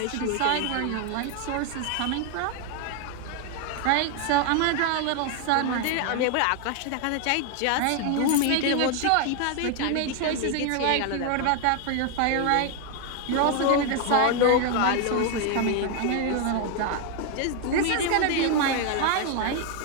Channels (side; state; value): both; different; correlation 0.01